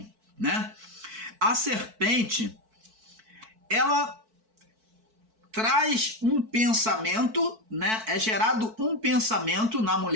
né? A serpente, ela traz um pensamento, né? É gerado um pensamento na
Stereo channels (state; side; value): late; left; 4.5 ms